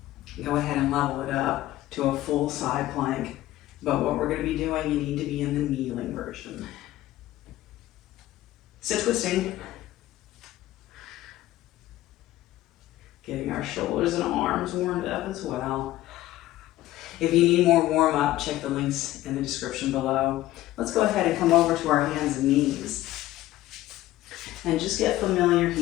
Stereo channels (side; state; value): right; quieter; 15.5 dB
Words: go ahead and level it up to a full side plank. But what we're going to be doing, you need to be in the kneeling version. So twisting. Getting our shoulders and arms warmed up as well. If you need more warm up, check the links in the description below. Let's go ahead and come over to our hands and knees. And just get familiar